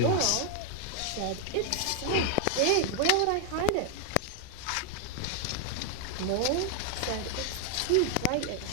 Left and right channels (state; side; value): different; both; correlation 0.00